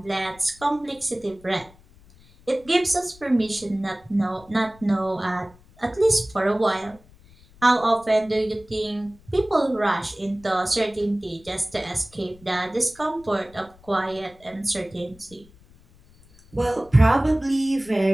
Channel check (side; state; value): left; noise; rumble, 26 dB below the sound